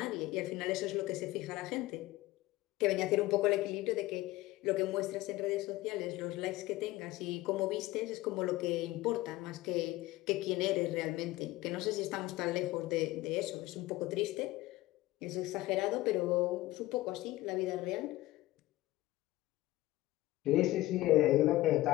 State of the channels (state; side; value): quieter; right; 17.8 dB